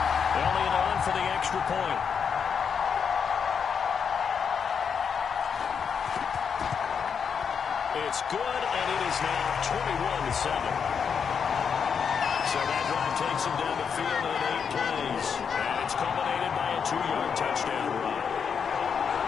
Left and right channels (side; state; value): right; quieter; 6.7 dB